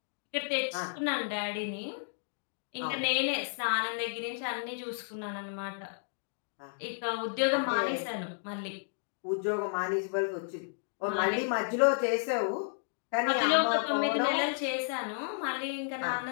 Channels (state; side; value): silent; right; digital silence